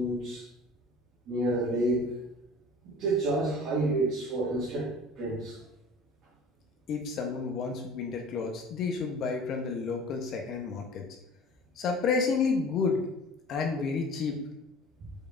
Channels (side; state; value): both; normal; correlation 0.43